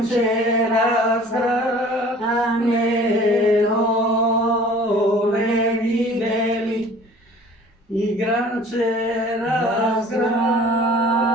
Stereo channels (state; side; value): normal; both; correlation 0.48